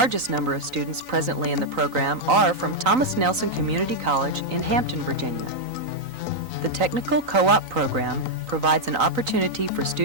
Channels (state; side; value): late; left; 3.9 ms